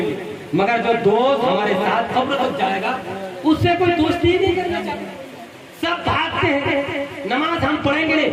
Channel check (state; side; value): identical; both; correlation 1.00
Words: मगर जो दोस्त हमारे साथ कब्र तक जाएगा उससे कोई दोस्ती ही नहीं करना चाहता। सब भागते हैं, नमाज हम पढ़ेंगे